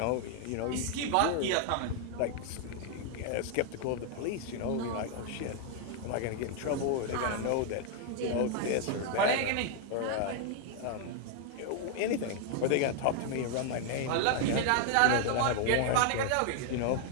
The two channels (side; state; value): both; different; correlation 0.00